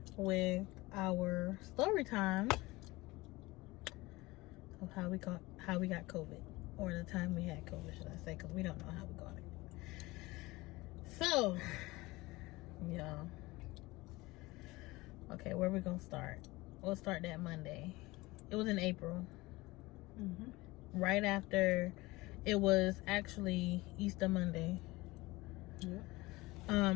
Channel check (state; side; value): quieter; right; 21.1 dB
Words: with our story time of how we got COVID, or the time we had COVID, should I say? Because we don't know how we got it. So, yeah. Okay, where we gonna start? We'll start that Monday. It was in April. Right after, it was actually Easter Monday.